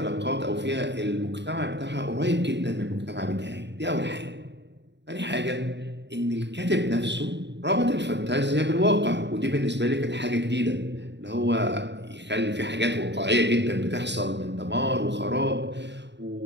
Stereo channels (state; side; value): late; left; 0.51 ms